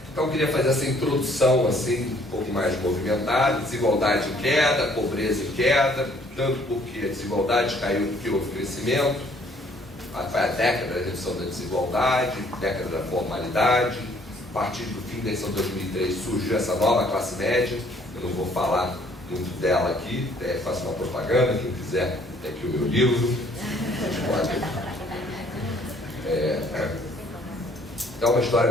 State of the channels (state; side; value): normal; both; correlation 0.62